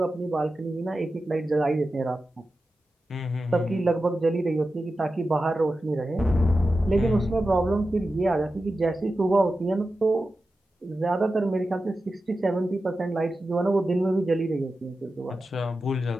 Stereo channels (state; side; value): normal; both; correlation 0.92